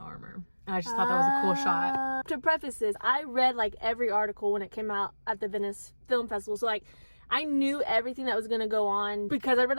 armor. And I just thought that was a cool shot. To preface this, I read like every article when it came out at the Venice Film Festival. So like I knew everything that was going to go on because I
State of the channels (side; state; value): both; inverted; correlation -1.00